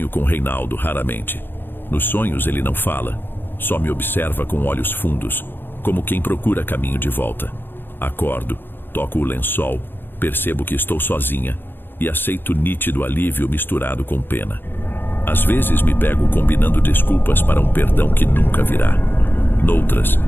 com Reinaldo raramente. Nos sonhos ele não fala, só me observa com olhos fundos, como quem procura caminho de volta. Acordo, toco o lençol, percebo que estou sozinha e aceito nítido alívio misturado com pena. Às vezes me pego combinando desculpas para um perdão que nunca virá. Noutras,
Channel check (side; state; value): right; late; 0.099 ms